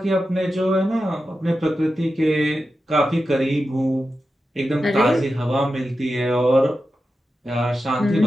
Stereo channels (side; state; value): both; normal; correlation 0.91